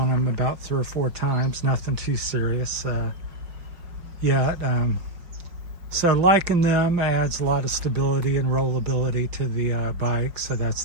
them about 3 or 4 times, nothing too serious yet. So liking them adds a lot of stability and rollability to the bike, so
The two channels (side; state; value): left; late; 5.5 ms